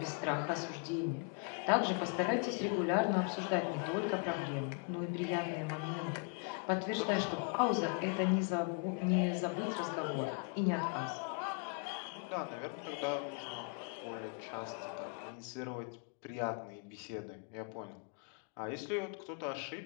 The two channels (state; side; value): quieter; right; 35.3 dB